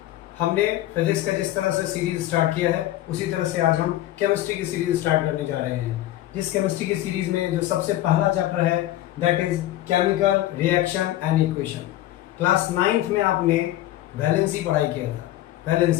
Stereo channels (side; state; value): right; quieter; 14.4 dB